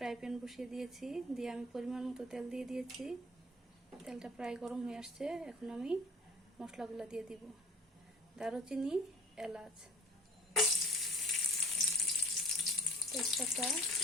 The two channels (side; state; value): both; normal; correlation 0.47